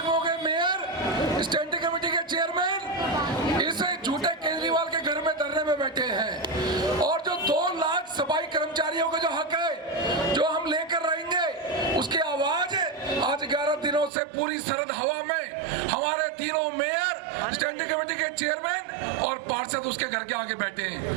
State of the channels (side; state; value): left; drops out; at 14.1 s